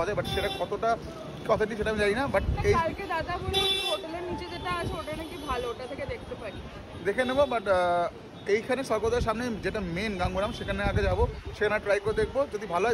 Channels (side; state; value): both; identical; correlation 1.00